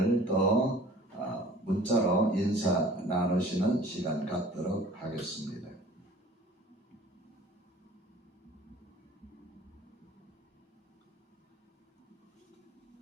또 문자로 인사 나누시는 시간 갖도록 하겠습니다.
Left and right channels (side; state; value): both; normal; correlation 0.48